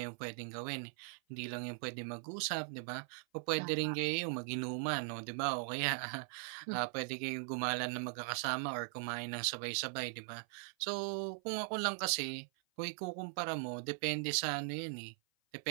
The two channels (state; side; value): silent; left; 51 dB below the other